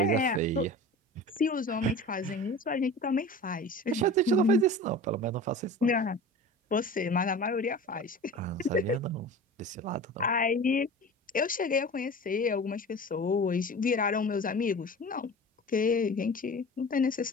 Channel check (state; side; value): normal; both; correlation 0.36